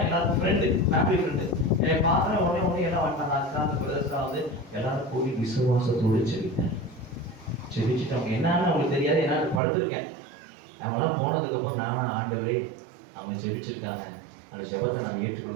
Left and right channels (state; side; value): drops out; left; at 9.6 s